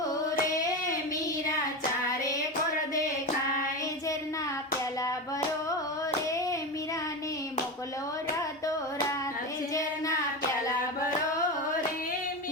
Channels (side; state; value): both; normal; correlation 0.20